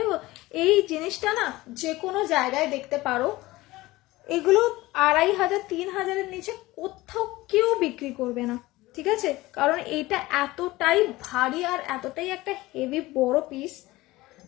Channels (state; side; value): quieter; right; 19.1 dB